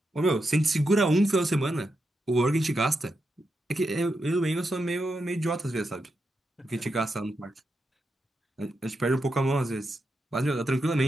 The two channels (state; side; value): normal; both; correlation 0.86